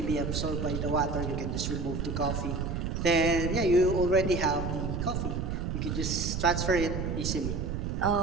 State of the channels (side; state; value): right; noise; rumble, 2 dB below the sound